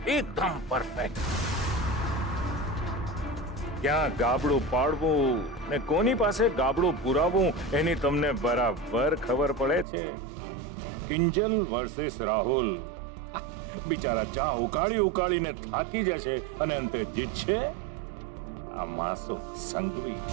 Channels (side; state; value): left; drops out; at 9.9 s